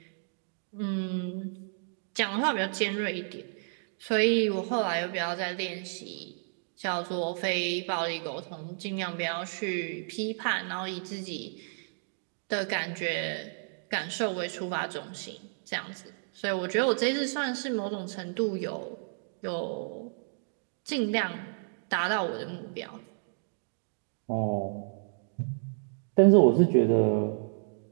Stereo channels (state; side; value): silent; left; digital silence